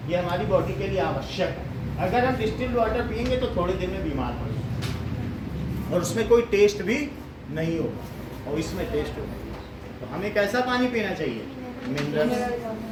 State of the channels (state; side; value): identical; both; correlation 1.00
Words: ये हमारी बॉडी के लिए आवश्यक है। अगर हम डिस्टिल्ड वाटर पियेंगे तो थोड़े दिन में बीमार पड़ेंगे और उसमें कोई टेस्ट भी नहीं होगा और इसमें टेस्ट होगा। तो हमें कैसा पानी पीना चाहिए? मिनरल।